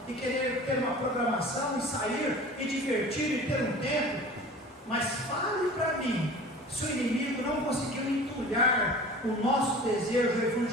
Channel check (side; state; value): both; normal; correlation 0.41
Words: e querer ter uma programação e sair e divertir e ter um tempo. Mas fale para mim, se o inimigo não conseguiu entulhar o nosso desejo